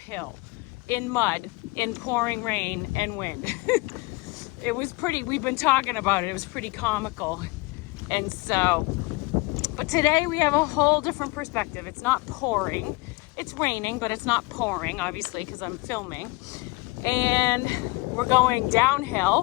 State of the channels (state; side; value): quieter; right; 25.1 dB